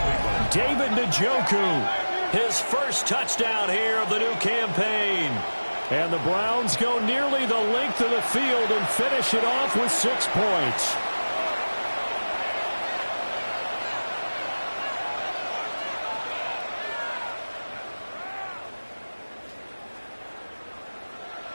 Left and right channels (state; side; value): inverted; both; correlation -1.00